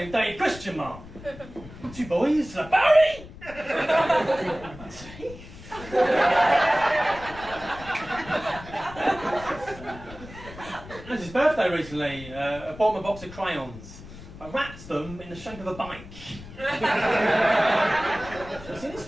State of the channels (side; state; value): left; noise; rumble, 16 dB below the sound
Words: Dave Christian Mark. 2 boys, Barry! It was his birthday recently. I bought him a box of crayons. I wrapped them in the shape of a bike. What's in his